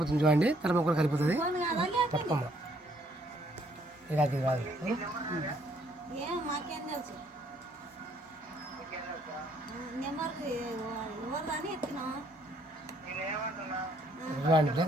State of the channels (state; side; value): normal; both; correlation 0.66